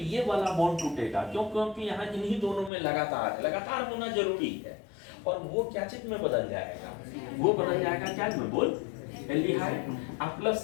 ये वाला बॉन्ड टूटेगा। क्यों? क्योंकि यहाँ इन्हीं दोनों में लगातार होना जरूरी है, और वो क्या चीज में बदल जाएगा, वो बदल जाएगा क्या में, बोल, एल्डिहाइड, प्लस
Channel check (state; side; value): drops out; right; at 2.7 s